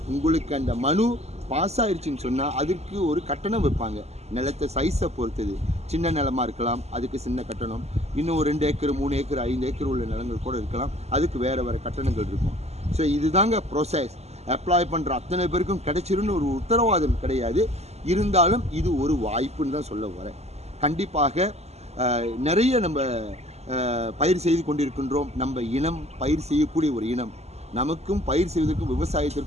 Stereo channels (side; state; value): left; late; 0.31 ms